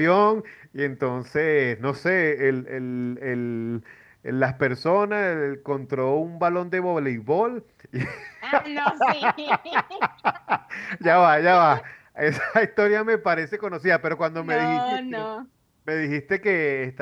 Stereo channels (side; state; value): both; identical; correlation 1.00